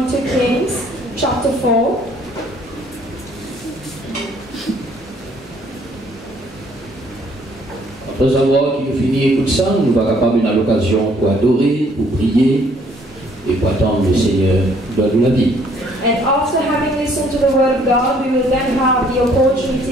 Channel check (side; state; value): both; normal; correlation 0.63